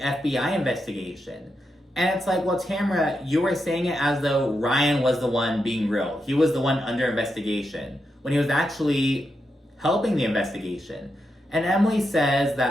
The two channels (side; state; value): both; normal; correlation 0.85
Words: investigation? And it's like, well, Tamra, you were saying it as though Ryan was the one being real. He was the one under investigation when he was actually helping the investigation. And Emily says